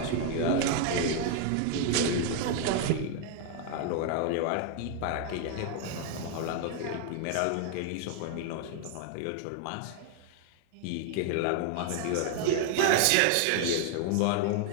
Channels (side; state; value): both; different; correlation 0.00